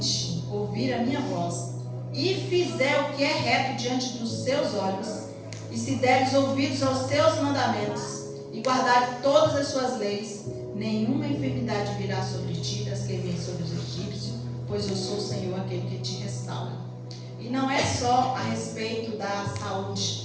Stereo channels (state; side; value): identical; both; correlation 1.00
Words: ouvirem a minha voz, e fizer o que é reto diante dos seus olhos, e se deres ouvidos aos seus mandamentos, e guardarem todas as suas leis, nenhuma enfermidade virá sobre ti, das que vêm sobre os egípcios, pois eu sou o Senhor, aquele que te restaura. E não é só a respeito da